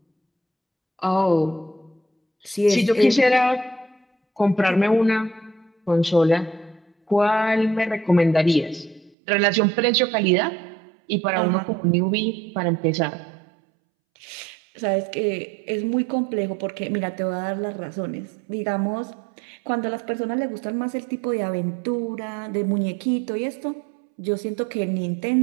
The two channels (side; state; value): left; drops out; at 9.2 s